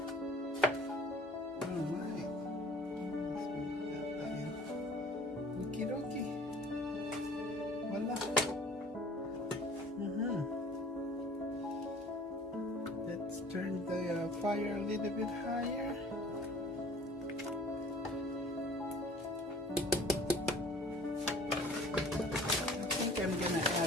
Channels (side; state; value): both; normal; correlation 0.49